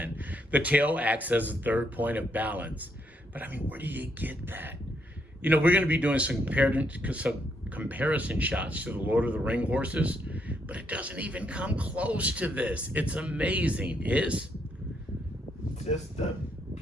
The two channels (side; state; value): both; normal; correlation 0.75